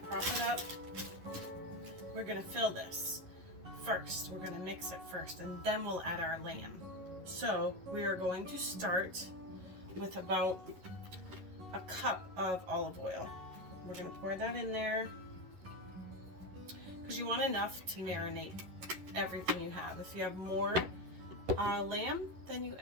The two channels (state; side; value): late; left; 11 ms